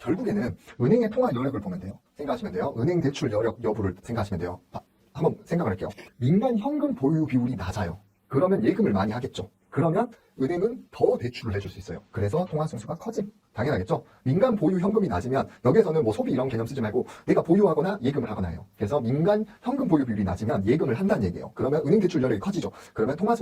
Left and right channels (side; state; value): both; identical; correlation 1.00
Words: 은행의 통화 여력을 보면 돼요. 생각하시면 돼요. 은행 대출 여력 여부를 생각하시면 돼요. 한번 생각을 할게요. 민간 현금 보유 비율이 낮아요. 그러면 예금을 많이 하겠죠. 그러면 은행은 더 대출을 해줄 수 있어요. 그래서 통화 승수가 커짐. 당연하겠죠. 민간 보유 현금이 낮으면 여기에서는 뭐 소비 이런 개념 쓰지 말고 내가 보유하거나 예금을 하거나 해요. 그래서 민간 현금 보유 비율이 낮으면 예금을 한다는 얘기예요. 그러면 은행 대출 여력이 커지죠. 그러면 통화